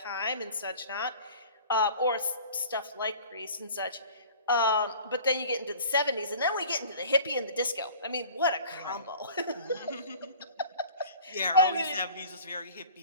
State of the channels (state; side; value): inverted; both; correlation -0.45